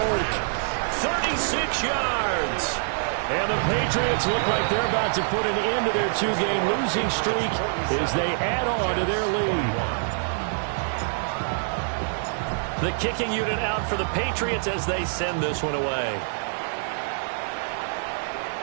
36 yards. And the Patriots look like they're about to put an end to their 2-game losing streak as they add on to their lead. The kicking unit out for the Patriots as they send this one away.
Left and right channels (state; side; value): silent; left; digital silence